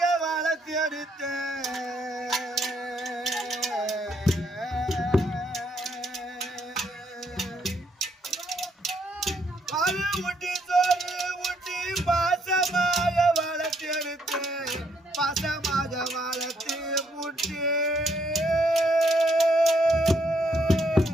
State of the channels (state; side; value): normal; both; correlation 0.72